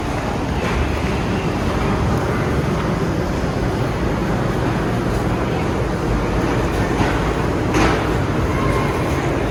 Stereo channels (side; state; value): both; identical; correlation 1.00